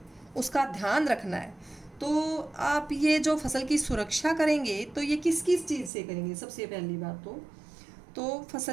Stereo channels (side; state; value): left; drops out; at 5.9 s